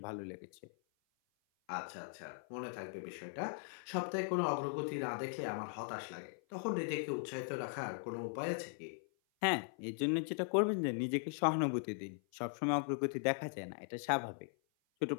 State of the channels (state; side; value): silent; right; 51 dB below the other